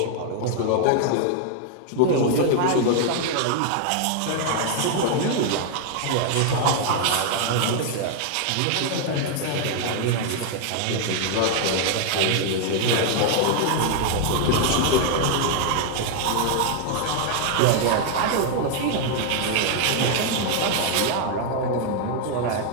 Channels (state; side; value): different; both; correlation 0.00